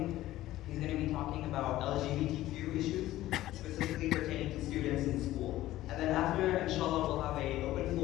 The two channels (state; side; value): quieter; right; 15.3 dB